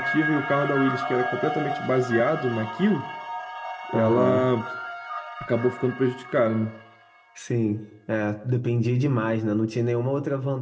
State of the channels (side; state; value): both; identical; correlation 1.00